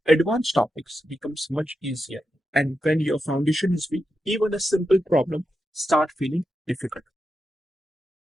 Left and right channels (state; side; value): normal; both; correlation 0.88